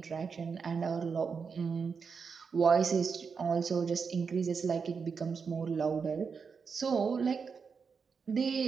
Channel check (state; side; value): quieter; left; 5.6 dB